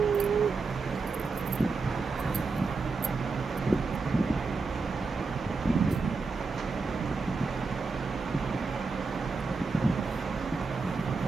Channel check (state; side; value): quieter; left; 4.2 dB